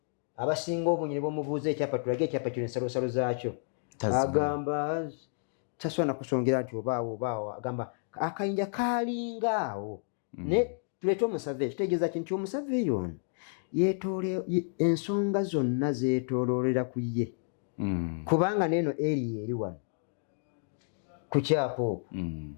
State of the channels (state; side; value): silent; right; digital silence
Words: abasinga obunyi ne bamubuuza ekyapa tulage ekyapa kino ensalosalo zaakyo agamba tasobola kusongera nti obaawo agamba akayinja kalingaawo ne tuleete omusave kitegeeza kinti omusave ono ensonga zonna zeetooloolera ku ye kubanga neeno eri eri wano ku kyapa okwo